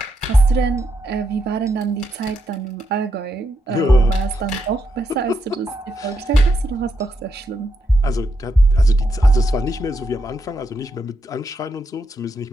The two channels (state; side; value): normal; both; correlation 0.82